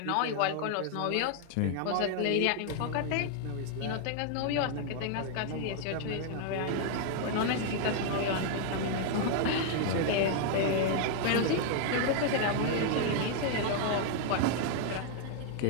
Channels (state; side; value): different; both; correlation 0.00